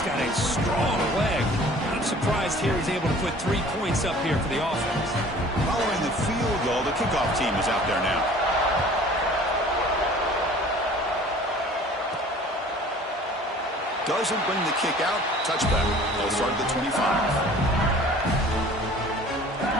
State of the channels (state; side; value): normal; both; correlation 0.48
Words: got a strong leg. I'm surprised here he's able to put 3 points up here for the offense. Following the field goal, the kickoff team is out there now. Doesn't bring the kick out. Touchback. They'll start at the 25. And